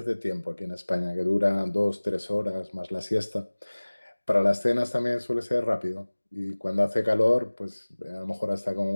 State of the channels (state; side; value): inverted; both; correlation -1.00